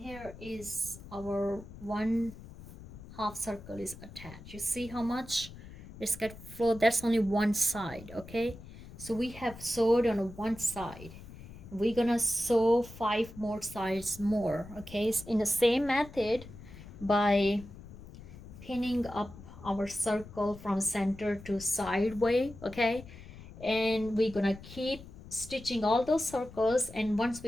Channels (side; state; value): left; noise; rumble, 16 dB below the sound